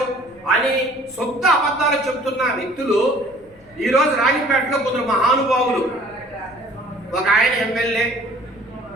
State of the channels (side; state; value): left; noise; rumble, 28 dB below the sound